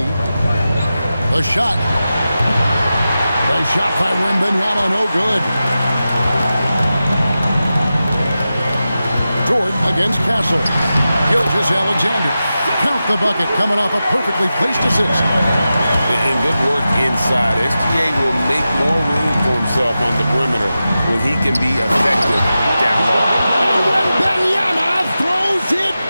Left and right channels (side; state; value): both; inverted; correlation -0.93